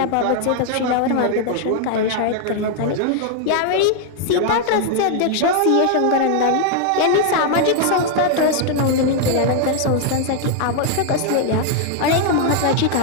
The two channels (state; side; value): different; both; correlation 0.00